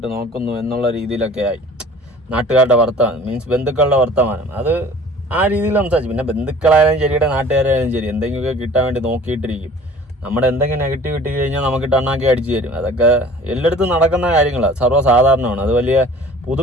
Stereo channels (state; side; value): normal; both; correlation 0.47